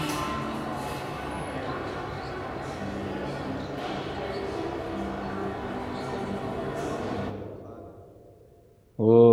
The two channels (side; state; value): both; identical; correlation 1.00